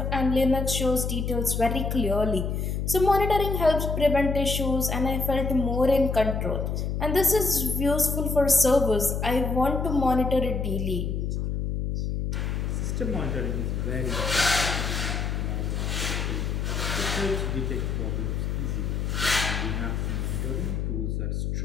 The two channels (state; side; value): noise; left; hum, 1 dB below the sound